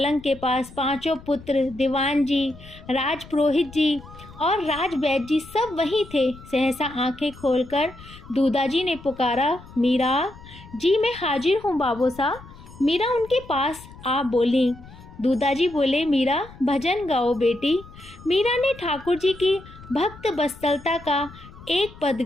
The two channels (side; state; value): left; noise; rumble, 19 dB below the sound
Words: के पास पांचों पुत्र, दीवान जी, राजपुरोहित जी और राजवैद्य जी सब वहीं थे। सहसा आंखें खोलकर दूधा जी ने पुकारा, मीरा जी मैं हाजिर हूँ बाबू साहब। मीरा उनके पास आ बोली। दूधा जी बोले, मीरा भजन गाओ बेटी। मीरा ने ठाकुर जी की भक्त वत्सलता का एक पद